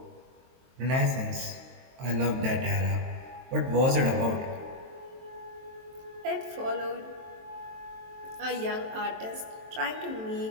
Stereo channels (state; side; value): late; left; 23 ms